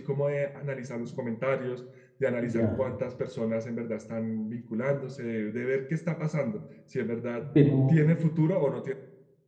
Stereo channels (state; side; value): identical; both; correlation 1.00